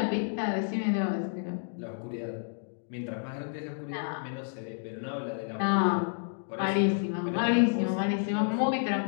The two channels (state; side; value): silent; right; digital silence